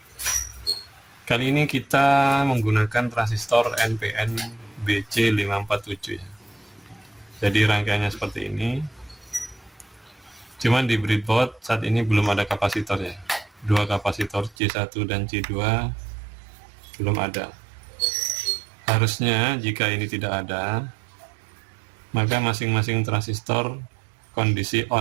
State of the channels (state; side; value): drops out; left; at 14.6 s